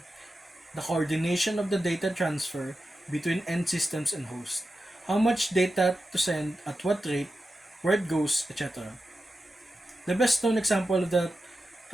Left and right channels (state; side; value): normal; both; correlation 0.91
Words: the coordination of the data transfer between end systems and host. How much data to send, at what rate, where it goes, etc. The best known example of the